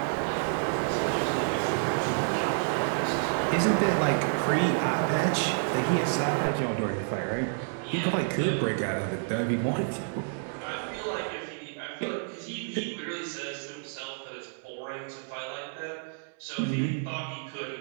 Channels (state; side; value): silent; left; 58 dB below the other